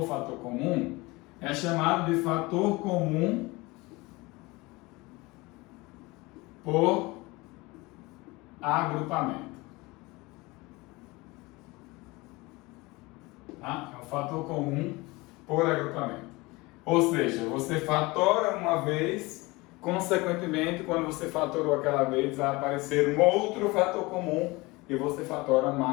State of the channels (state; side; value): quieter; right; 23.1 dB